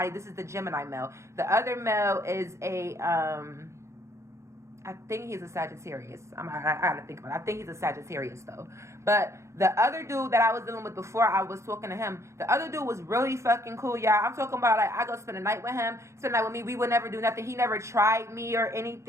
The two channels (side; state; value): left; late; 0.14 ms